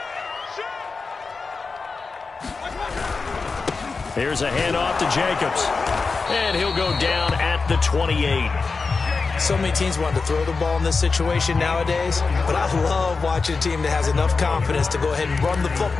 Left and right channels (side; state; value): right; quieter; 4.4 dB